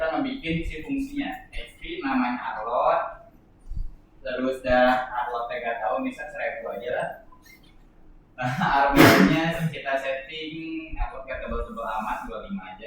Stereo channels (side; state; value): both; identical; correlation 1.00